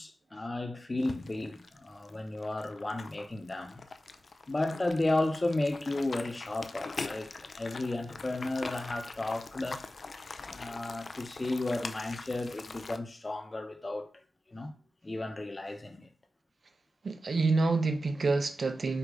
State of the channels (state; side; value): normal; both; correlation 0.93